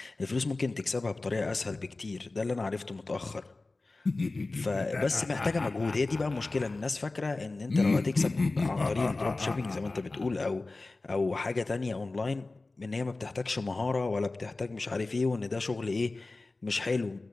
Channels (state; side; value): quieter; right; 3.3 dB